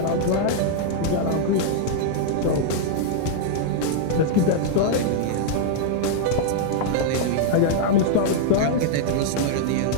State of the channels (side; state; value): both; different; correlation -0.01